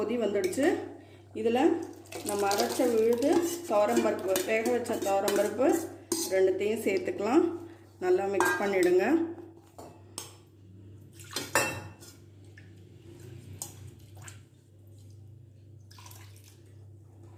வந்துடுச்சு. இதில் நம்ம அரைச்ச விழுது துவரம்பருப்பு, வேக வச்ச துவரம்பருப்பு ரெண்டுத்தையும் சேர்த்துக்கலாம். நல்லா மிக்ஸ் பண்ணிவிடுங்க.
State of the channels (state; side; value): identical; both; correlation 1.00